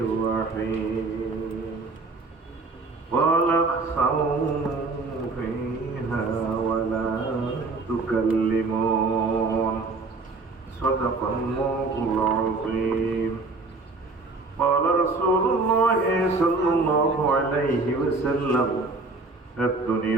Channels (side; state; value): left; quieter; 3.7 dB